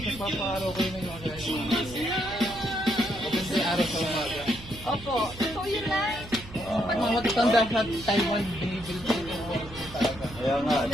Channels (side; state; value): right; noise; hum, 16 dB below the sound